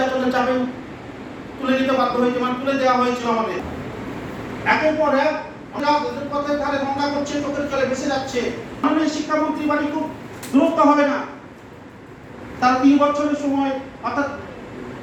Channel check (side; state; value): both; identical; correlation 1.00